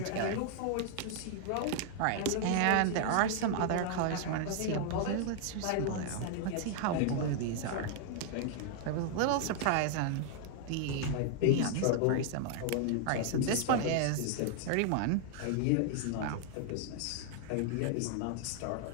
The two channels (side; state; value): both; different; correlation 0.00